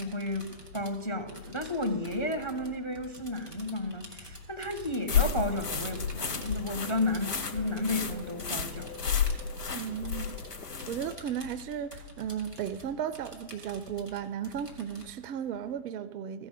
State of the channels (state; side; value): late; right; 1.3 ms